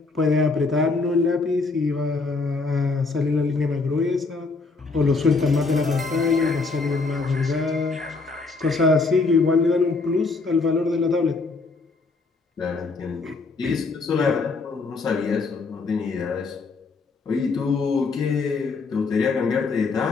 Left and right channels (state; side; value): quieter; right; 4.0 dB